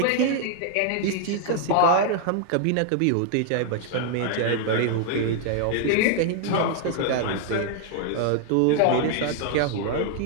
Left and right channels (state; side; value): different; both; correlation 0.00